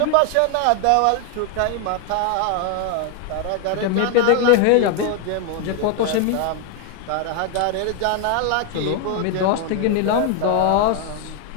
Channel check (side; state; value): both; different; correlation 0.01